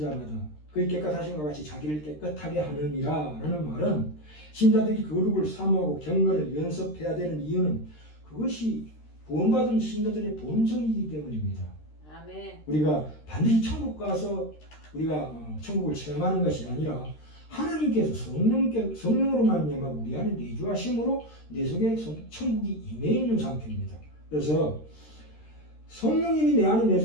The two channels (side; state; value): right; late; 13 ms